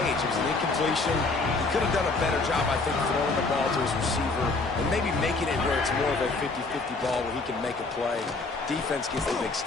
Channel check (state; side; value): quieter; right; 3.6 dB